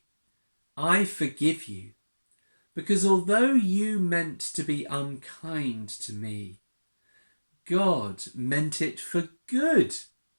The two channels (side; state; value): both; inverted; correlation -1.00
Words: I forgive you, because although you meant to be unkind to me, God meant it for good,